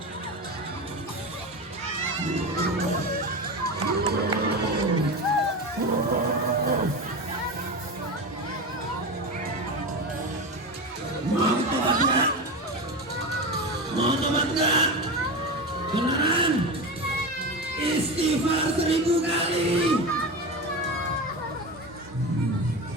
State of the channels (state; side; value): normal; both; correlation 0.23